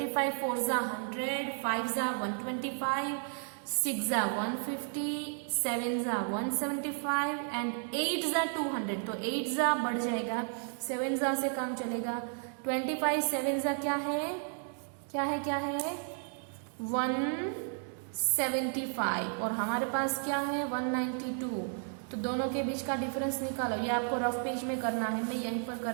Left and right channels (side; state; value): left; silent; 56 dB below the other